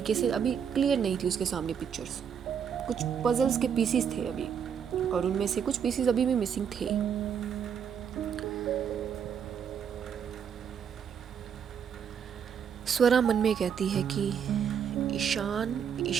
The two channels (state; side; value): quieter; left; 7.7 dB